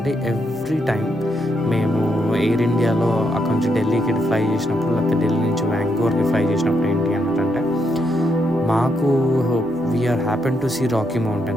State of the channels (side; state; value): both; normal; correlation 0.78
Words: ఎవ్రీ టైం మేము ఎయిర్ ఇండియాలో అక్కడ నుంచి ఢిల్లీకి ఫ్లై చేసినప్పుడు, లేకపోతే ఢిల్లీ నుంచి వ్యాంకోవర్కి ఫ్లై చేసినప్పుడు ఏంటి అంటే మాకు we are happen to see Rocky